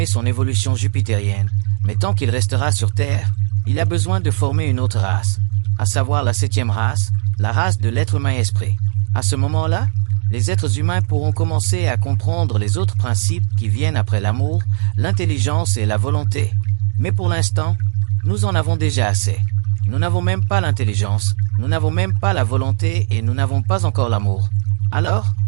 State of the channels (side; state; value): left; silent; 62 dB below the other